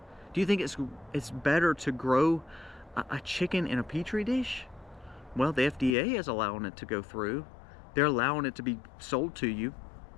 Do you think it's better to grow a chicken in a petri dish? Well, the FDA is allowing it to go through. They're allowing it to be sold to you.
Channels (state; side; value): drops out; right; at 6.0 s